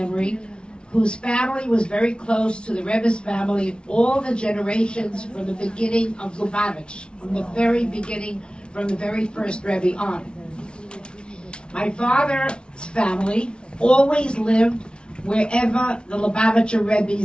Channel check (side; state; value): right; late; 0.056 ms